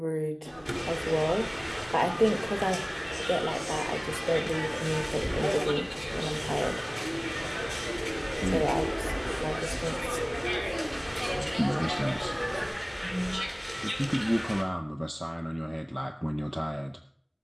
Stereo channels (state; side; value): identical; both; correlation 1.00